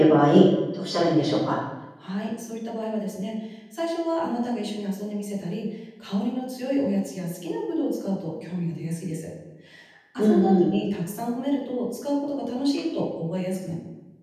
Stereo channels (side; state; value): both; identical; correlation 1.00